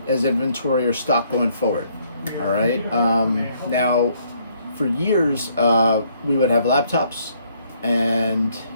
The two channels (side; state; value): both; inverted; correlation -0.67